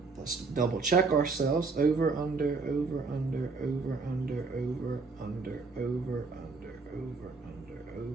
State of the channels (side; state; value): left; quieter; 4.2 dB